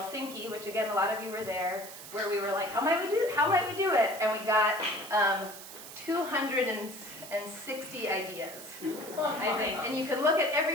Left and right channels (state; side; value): noise; right; hiss, 13 dB below the sound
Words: which again a lot of you were there, where we were how might we do it? And we got 260 ideas, I think. And you can look at